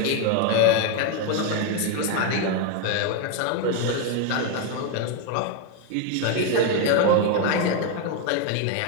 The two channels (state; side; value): different; both; correlation 0.01